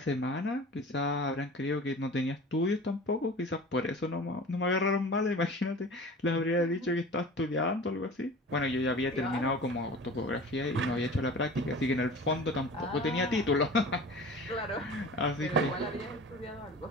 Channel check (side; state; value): both; normal; correlation 0.39